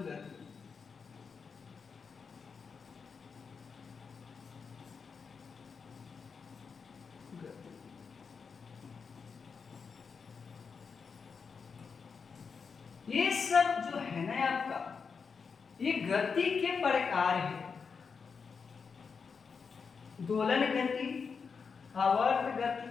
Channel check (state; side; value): quieter; right; 5.6 dB